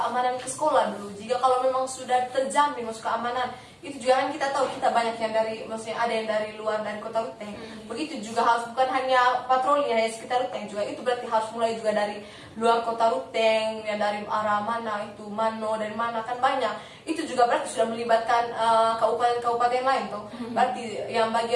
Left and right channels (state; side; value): identical; both; correlation 1.00